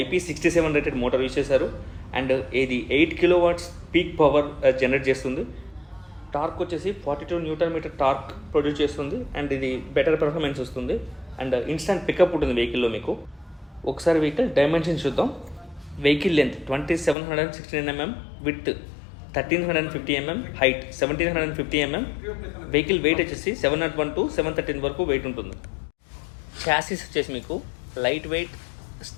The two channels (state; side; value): drops out; right; at 17.2 s